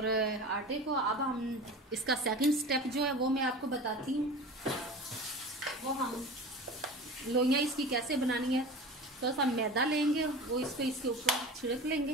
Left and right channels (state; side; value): normal; both; correlation 0.34